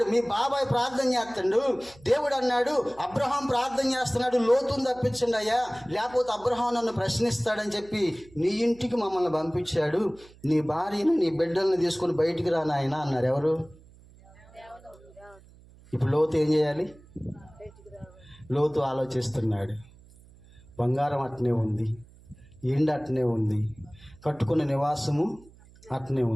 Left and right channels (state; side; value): noise; right; hum, 24 dB below the sound